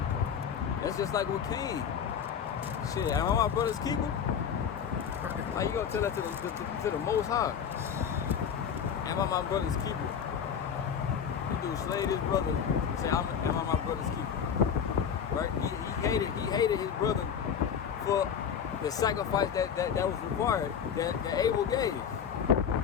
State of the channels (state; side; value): quieter; right; 7.6 dB